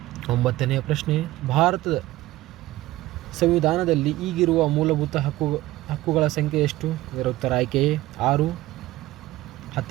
9ನೇ ಪ್ರಶ್ನೆ, ಭಾರತದ ಸಂವಿಧಾನದಲ್ಲಿ ಈಗಿರುವ ಮೂಲಭೂತ ಹಕ್ಕುಗಳ ಸಂಖ್ಯೆ ಎಷ್ಟು? ಇದರ ಉತ್ತರ ಆಯ್ಕೆ ಎ, 6.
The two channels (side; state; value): left; quieter; 17.0 dB